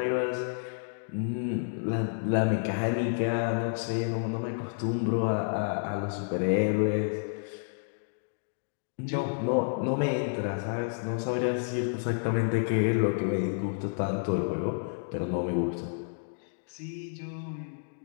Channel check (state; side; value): silent; right; digital silence